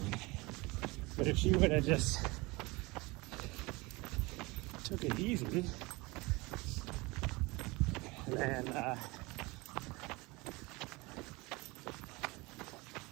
But if she would have just took it easy, then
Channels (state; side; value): quieter; left; 23.9 dB